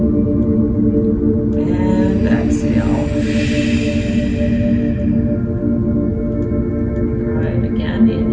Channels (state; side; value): identical; both; correlation 1.00